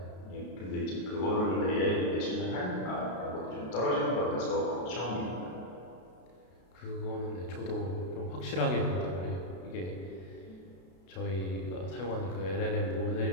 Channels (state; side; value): late; right; 32 ms